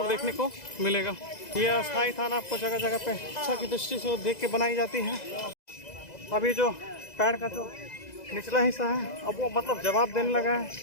देखने को मिलेगा। ये अस्थायी थाना आपको जगह जगह पे अच्छा की दृष्टि से देख के बनाई जाती है। अभी जो पैर का जो निचला हिस्सा है अब वो मतलब जवाब देने लगा है,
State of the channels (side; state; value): right; late; 2.0 ms